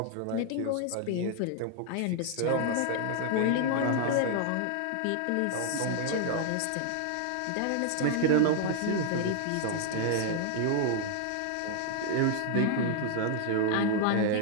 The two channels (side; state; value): both; different; correlation 0.00